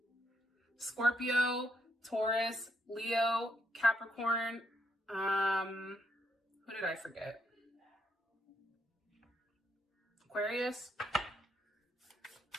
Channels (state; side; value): normal; both; correlation 0.75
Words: Scorpio, Taurus, Leo, Capricorn. Who did I forget? Aquarius.